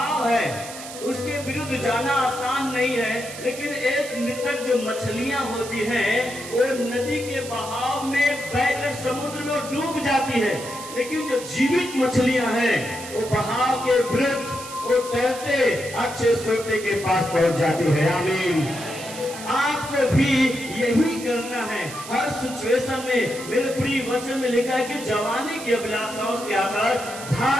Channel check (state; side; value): noise; right; hiss, 12 dB below the sound